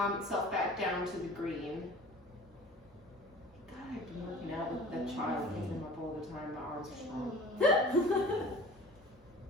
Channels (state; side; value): normal; both; correlation 0.43